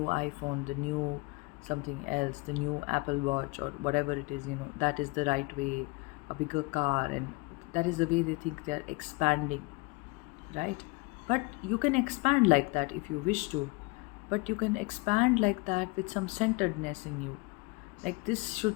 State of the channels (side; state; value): right; quieter; 26.2 dB